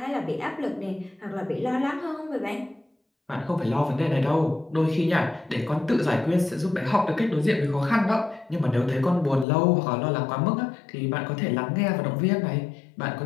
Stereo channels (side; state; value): right; drops out; at 9.5 s